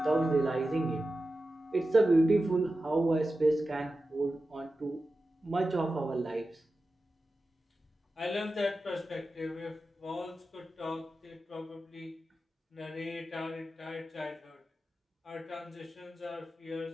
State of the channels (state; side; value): normal; both; correlation 0.93